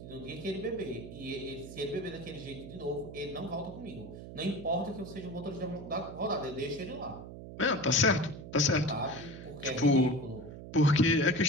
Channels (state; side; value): noise; right; hum, 12 dB below the sound